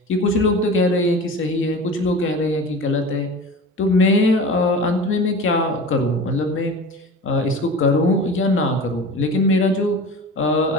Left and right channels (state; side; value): normal; both; correlation 0.35